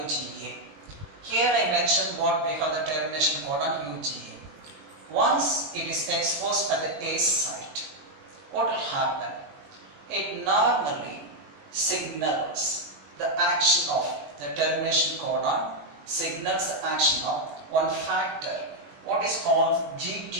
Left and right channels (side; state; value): left; late; 20 ms